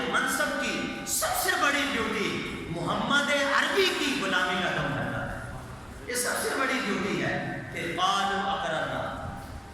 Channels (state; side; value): identical; both; correlation 1.00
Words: منصب کی سب سے بڑی ڈیوٹی محمد عربی کی غلامی کا دم بھرنا ہے. یہ سب سے بڑی ڈیوٹی ہے. پھر قالوا اقررنا،